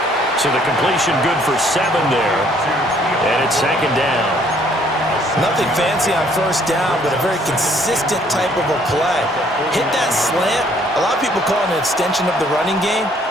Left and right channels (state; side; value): normal; both; correlation 0.63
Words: So the completion good for 7 there. And it's second down. Nothing fancy on first down, but a very consistent type of a play. Hit that slant. A lot of people call it an extension of the running game,